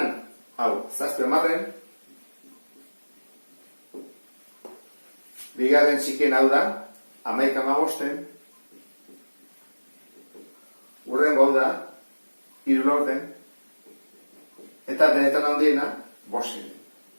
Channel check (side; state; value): both; inverted; correlation -1.00